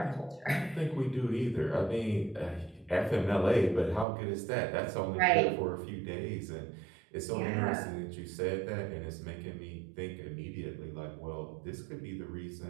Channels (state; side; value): drops out; left; at 4.0 s